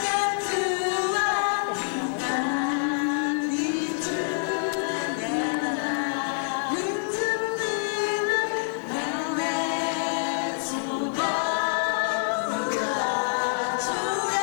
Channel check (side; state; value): right; silent; 61 dB below the other